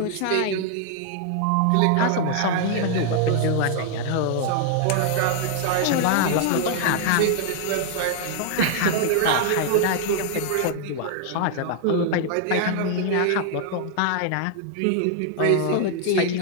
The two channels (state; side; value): different; both; correlation 0.00